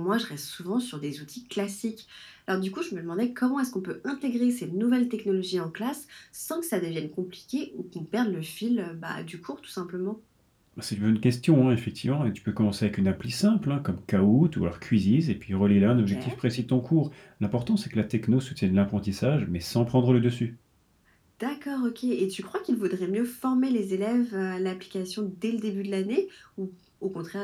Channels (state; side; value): identical; both; correlation 1.00